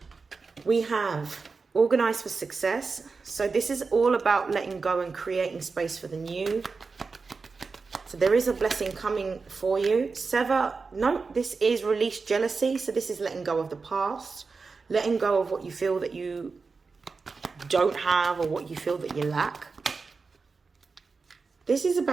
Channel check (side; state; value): left; quieter; 4.5 dB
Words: We have Organize for Success. So this is all about letting go and creating space for the new. So there is a blessing coming for you. This is Release Jealousy. So this is letting go of the past, letting go of what you feel that you don't have, or what you feel that you lack. This is